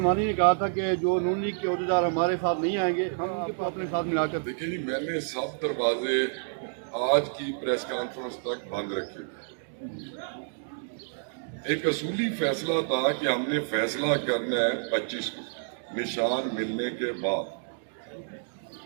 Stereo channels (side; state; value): left; silent; digital silence